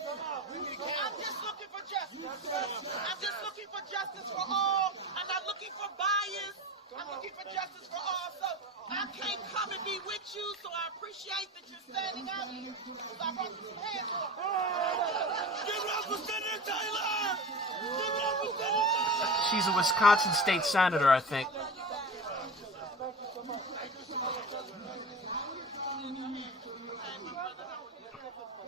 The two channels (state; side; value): normal; both; correlation 0.30